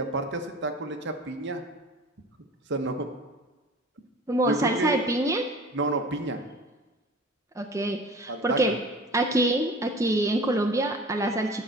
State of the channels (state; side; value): normal; both; correlation 0.41